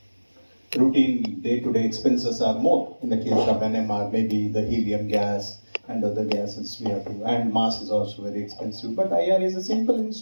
routine day-to-day expenses are more. In the case of NMR, maybe the helium gas and other gases we have to, and mass is also very expensive. But IR is a simple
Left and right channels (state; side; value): inverted; both; correlation -1.00